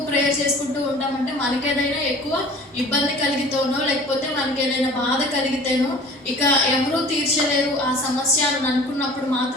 ప్రేయర్ చేసుకుంటూ ఉంటామంటే మనకేదైనా ఎక్కువ ఇబ్బంది కలిగితేనో లేకపోతే మనకి ఏదైనా బాధ కలిగితేనో ఇక ఎవరూ తీర్చలేరు ఆ సమస్య అని అనుకున్నప్పుడు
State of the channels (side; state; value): both; normal; correlation 0.45